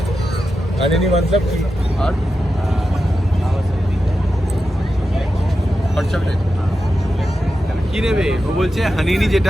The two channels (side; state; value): both; normal; correlation 0.90